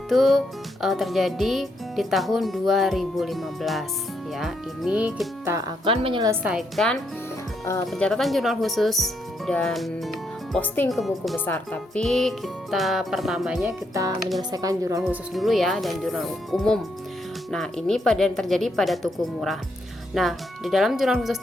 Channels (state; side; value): normal; both; correlation 0.77